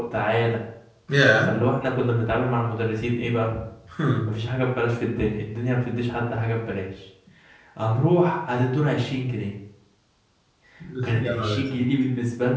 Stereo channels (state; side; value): identical; both; correlation 1.00